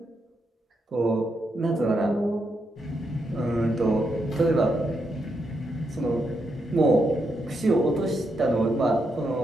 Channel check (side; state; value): both; normal; correlation 0.81